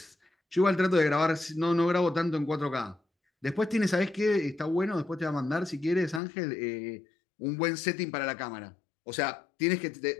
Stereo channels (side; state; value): right; drops out; at 6.2 s